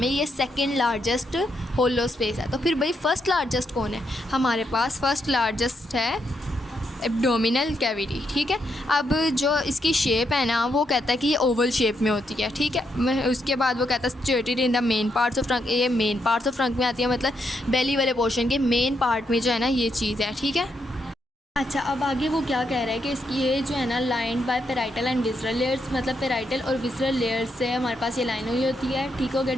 ये सेकंड लार्जेस्ट होलो स्पेस है। तो फिर भाई फर्स्ट लार्जेस्ट कौन है, हमारे पास फर्स्ट लार्जेस्ट है एब्डोमिनल कैविटी, ठीक है। अब जो इसकी शेप है ना वो कहता है कि ये ओवल शेप में होती है, ठीक है। उसके बाद वो कहता है situated in the main parts of trunk, ये मेन पार्ट्स ऑफ ट्रंक में आती है, मतलब बेली वाले पोर्शन के मेन पार्ट में जो है ना ये चीज़ है, ठीक है। अच्छा, अब आगे वो क्या कह रहा है कि इसकी ये जो है ना line by parietal and visceral layers, मतलब पेराइटल और विसरल लेयर्स से हमारे पास ये लाइन हुई होती है, ठीक हो गया।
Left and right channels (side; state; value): both; normal; correlation 0.79